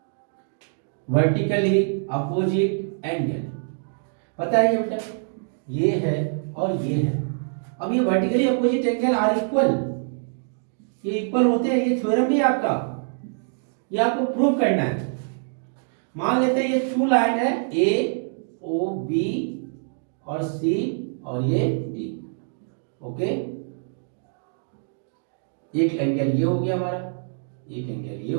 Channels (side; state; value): left; silent; digital silence